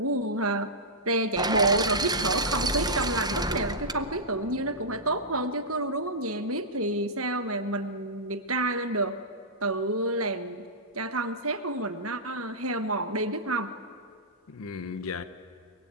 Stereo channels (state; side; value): normal; both; correlation -0.13